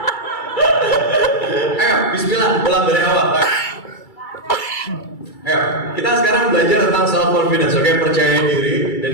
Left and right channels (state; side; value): late; right; 2.3 ms